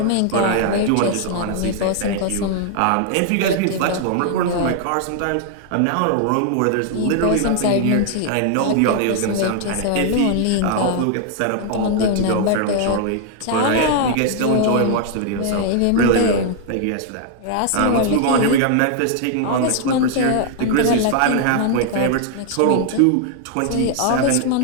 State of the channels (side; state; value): both; different; correlation 0.00